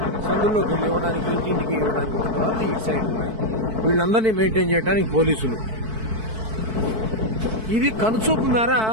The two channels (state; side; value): late; left; 4.6 ms